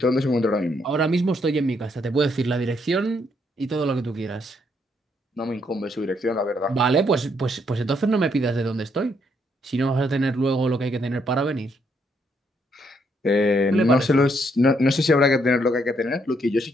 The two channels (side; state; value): both; normal; correlation 0.73